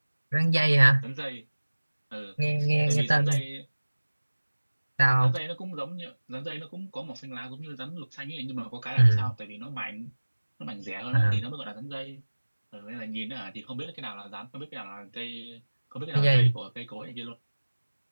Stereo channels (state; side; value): inverted; both; correlation -1.00